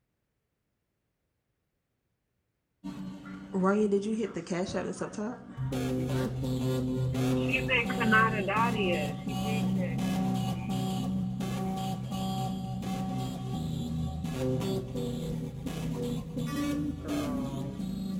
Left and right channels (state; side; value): identical; both; correlation 1.00